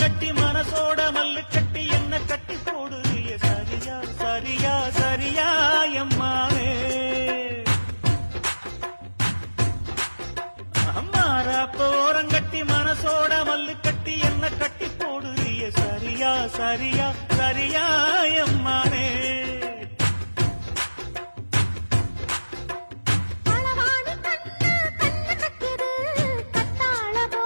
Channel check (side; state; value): both; inverted; correlation -1.00